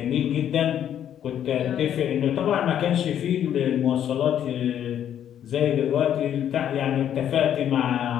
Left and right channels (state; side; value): quieter; right; 10.1 dB